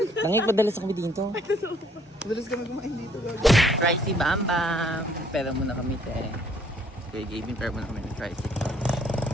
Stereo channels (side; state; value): both; normal; correlation 0.62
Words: Nangig padalas kami dito. Madalas kami kumain dito, gago. Pricey Bam Bam. Pera muna kami, te. Kaya giving pera muna kami ng Pricey.